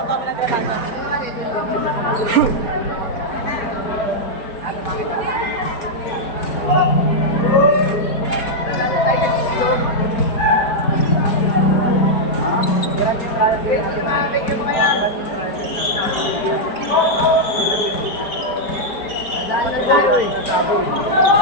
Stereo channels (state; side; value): late; right; 4.6 ms